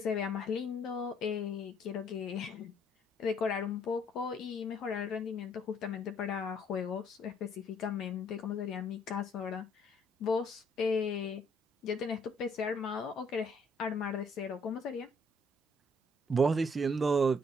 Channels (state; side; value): normal; both; correlation 0.65